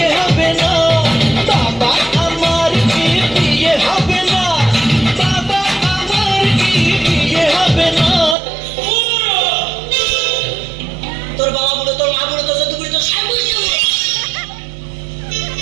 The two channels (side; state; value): left; drops out; at 8.3 s